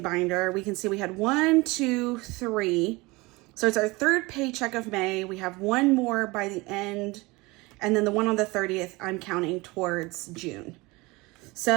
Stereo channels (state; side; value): quieter; left; 23.4 dB